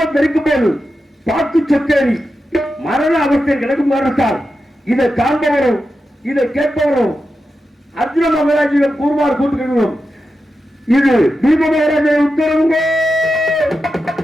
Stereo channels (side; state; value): both; normal; correlation 0.90